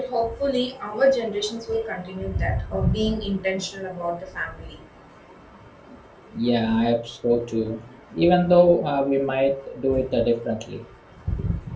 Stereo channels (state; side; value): identical; both; correlation 1.00